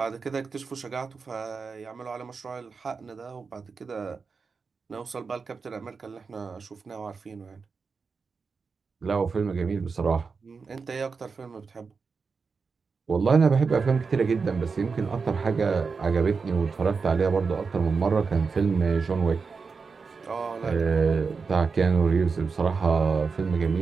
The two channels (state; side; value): quieter; left; 5.0 dB